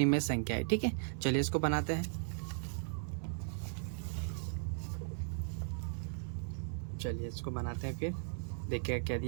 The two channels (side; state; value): left; silent; 53 dB below the other